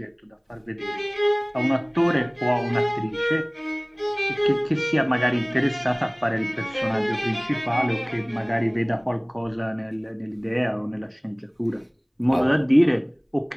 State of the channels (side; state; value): both; identical; correlation 1.00